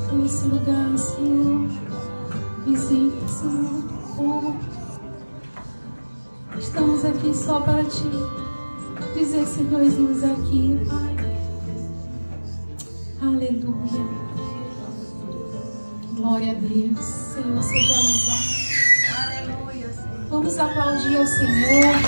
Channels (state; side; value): inverted; both; correlation -1.00